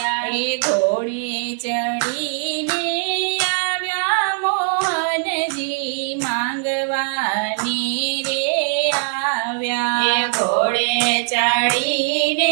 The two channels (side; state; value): left; silent; digital silence